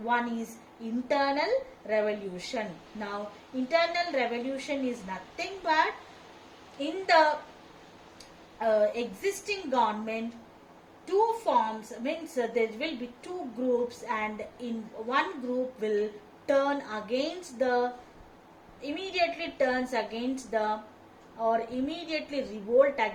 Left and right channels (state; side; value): identical; both; correlation 1.00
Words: One is internal revolution. Now internal revolution is nothing but in the existing government, two forms, means there will be two groups, and in one group will turn against the immediately turns against the or immediately revolt